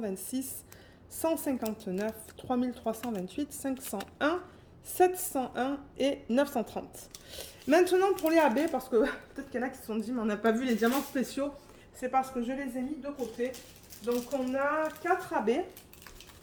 159, 3328, 501, 701 et 930. Maintenant pour les AB, parce que peut-être qu'il y en a qui se sont dit mais on n'a pas vu les diamants spéciaux, c'est parce que je les ai mis de côté. Donc on a 4 AB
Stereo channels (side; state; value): both; identical; correlation 1.00